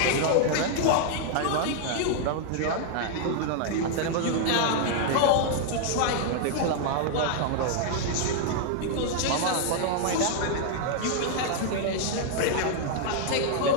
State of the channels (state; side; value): different; both; correlation -0.01